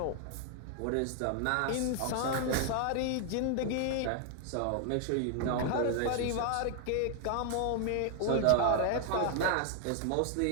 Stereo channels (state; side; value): different; both; correlation 0.00